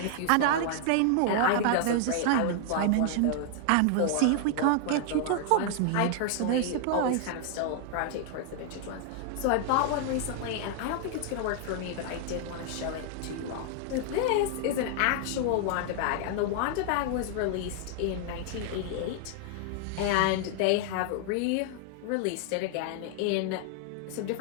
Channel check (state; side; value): different; both; correlation 0.00